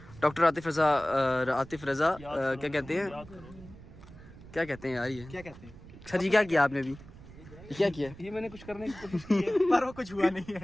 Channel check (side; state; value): right; noise; rumble, 18 dB below the sound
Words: डॉक्टर आतिफ रजा क्या कहते हैं, क्या कहते हैं यार ये, क्या कहते हैं सर जी क्या किया आपने अभी, क्या किया? ये मैंने कुछ करने की कोशिश की है पर वो कुछ हुआ नहीं है।